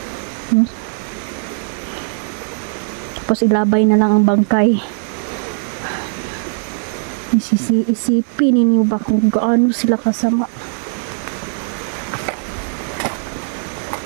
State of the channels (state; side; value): silent; left; 67 dB below the other